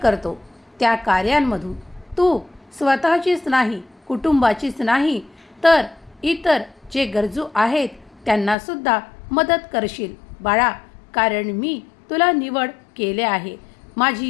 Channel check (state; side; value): drops out; right; at 8.6 s